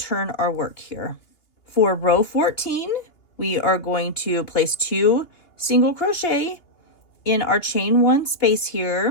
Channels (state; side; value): late; right; 2.8 ms